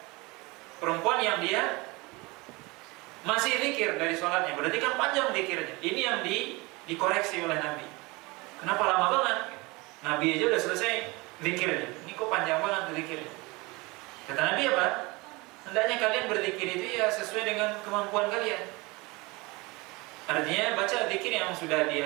perempuan yang dia masih zikir dari sholatnya. Berarti kan panjang zikirnya. Ini yang dikoreksi oleh Nabi. Kenapa lama banget? Nabi aja udah selesai zikirnya, ini kok panjang banget zikirnya. Kata Nabi apa? Hendaknya kalian berzikir itu ya sesuai dengan kemampuan kalian. Artinya baca zikir yang sudah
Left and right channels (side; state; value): left; quieter; 24.4 dB